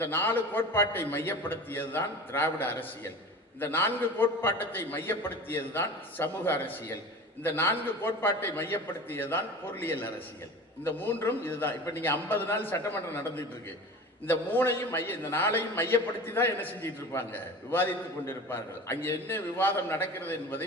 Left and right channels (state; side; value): normal; both; correlation 0.35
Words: 4 கோட்பாட்டை மையப்படுத்தியது தான் திராவிட அரசியல். இந்த 4 கோட்பாட்டத்தை மையப்படுத்தியது தான் சமூக அரசியல். இந்த 4 கோட்பாட்டை மையப்படுத்தியதுதான் பொருளியல் அரசியல். இந்த 3ம் இதுதான். இப்ப நீங்க 50 நாள் சட்டமன்றம் நடந்துட்டு இருக்கு. இந்த 3ஐயும் இந்த 4ஐயும் மையப்படுத்தி தான் என்ன செஞ்சிட்டு இருப்பாங்க, விவாதித்துக் கொண்டிருப்பார்கள். அங்கே என்ன விவாதம் நடக்கிறது